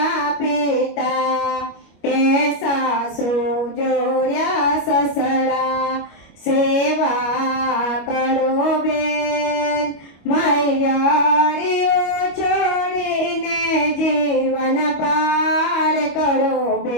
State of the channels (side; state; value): right; late; 25 ms